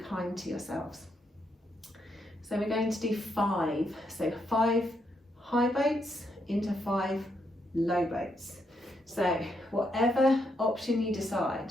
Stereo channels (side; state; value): both; normal; correlation 0.78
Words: to yourselves. So we're going to do 5. So 5 high boats into 5 low boats. So whatever option you